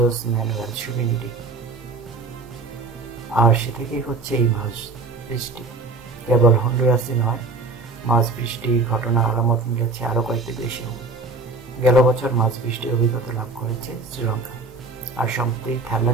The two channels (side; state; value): left; quieter; 3.8 dB